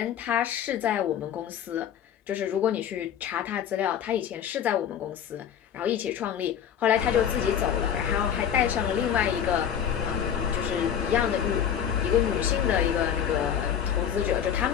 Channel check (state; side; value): quieter; right; 8.9 dB